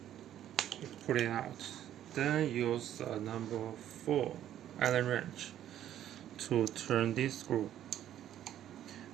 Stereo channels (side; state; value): left; quieter; 11.4 dB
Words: put it out. Then use number 4 Allen wrench to turn this screw